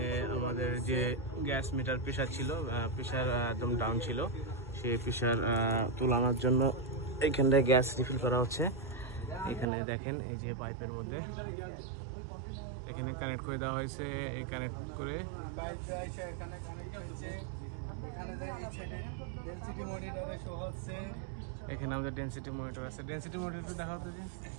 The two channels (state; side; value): drops out; left; at 9.7 s